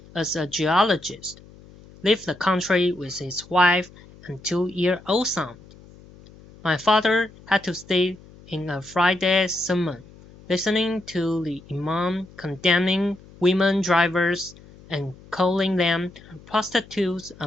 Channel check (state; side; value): noise; left; hum, 22 dB below the sound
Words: as a geologist, leave the country with his wife and 2-year-old son. My father had to stay in a Friday sermon, listening to the imam condemning women drivers and calling them prostitutes